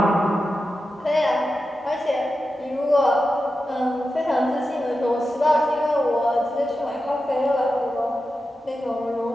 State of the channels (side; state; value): both; normal; correlation 0.91